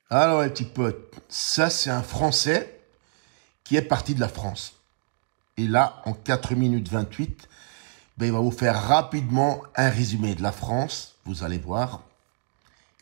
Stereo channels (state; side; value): silent; left; digital silence